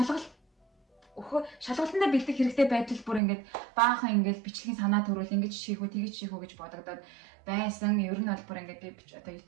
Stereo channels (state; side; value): drops out; left; at 3.2 s